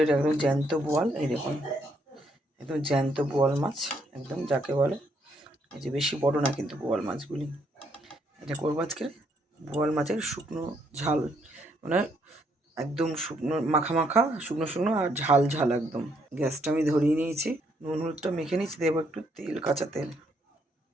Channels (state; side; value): normal; both; correlation 0.72